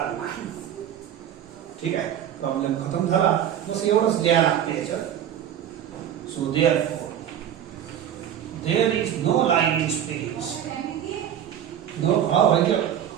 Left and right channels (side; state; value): left; quieter; 10.0 dB